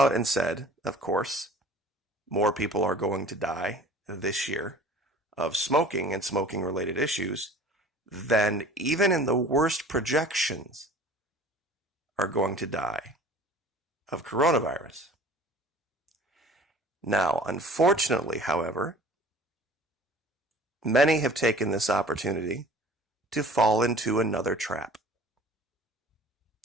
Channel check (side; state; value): both; normal; correlation 0.46